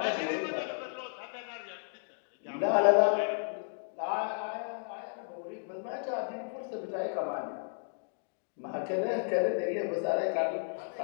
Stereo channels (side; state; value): right; silent; digital silence